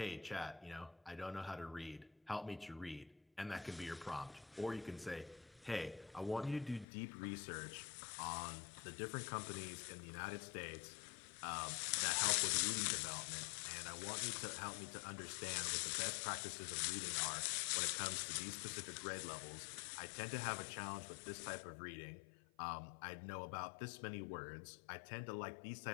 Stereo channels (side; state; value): right; drops out; at 6.9 s